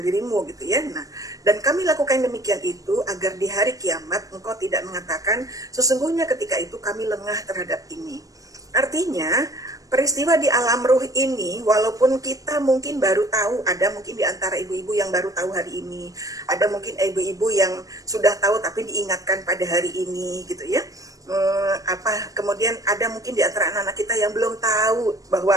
dirimu gitu ya. Nah, dan kami lakukan demikian itu agar di hari kiamat engkau tidak mengatakan sesungguhnya ketika itu kami lengah terhadap ini. Artinya peristiwa di alam ruh ini, walaupun kita mungkin baru tahu, ada mungkin di antara ibu-ibu yang baru tahu hari ini, ada mungkin ibu-ibu yang sudah tahu tapi diingatkan pada hari ini gitu ya. Kemudian ada mungkin di antara anak-anak kita yang belum tahu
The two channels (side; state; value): left; late; 0.17 ms